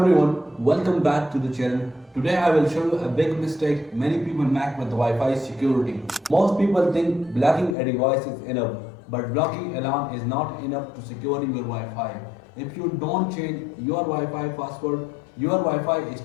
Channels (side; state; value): right; drops out; at 7.8 s